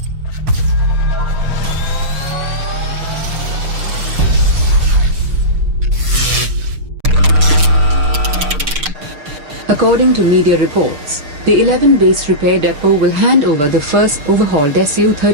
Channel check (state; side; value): late; left; 6.5 ms